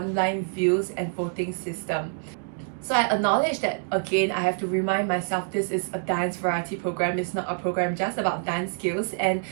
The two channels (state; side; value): silent; left; digital silence